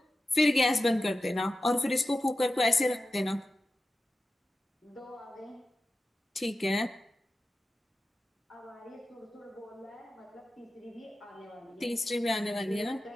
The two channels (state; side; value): normal; both; correlation 0.92